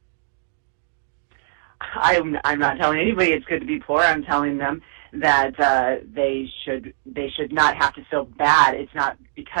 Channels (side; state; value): left; silent; digital silence